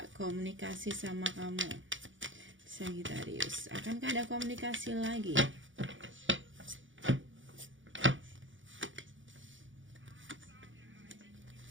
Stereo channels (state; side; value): late; left; 0.56 ms